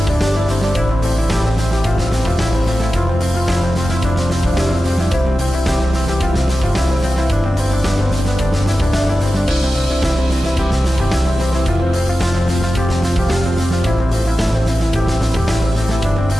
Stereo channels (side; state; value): both; normal; correlation 0.93